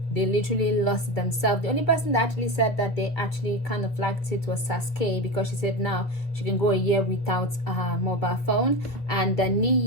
They literally lost themselves. The only person that actually said that they actually kind of liked it was Sasuke, because she said now she can go a year without a mobile phone. And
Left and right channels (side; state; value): right; late; 2.3 ms